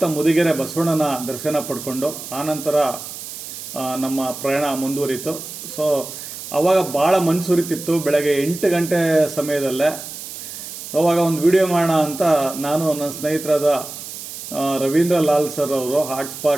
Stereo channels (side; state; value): right; noise; hiss, 10 dB below the sound